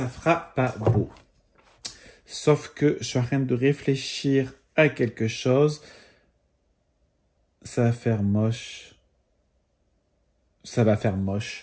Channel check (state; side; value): identical; both; correlation 1.00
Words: fera pas beau. Sauf que je suis en train de réfléchir à quelque chose. Ça va faire moche. Ça va faire